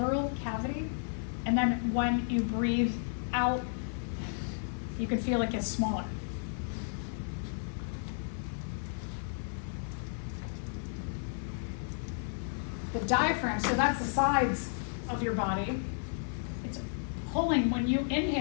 cavity, and then when you breathe out, you can feel it gets smaller. The diaphragm, so that's the sides of your body. It's pulling, when you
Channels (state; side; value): silent; right; digital silence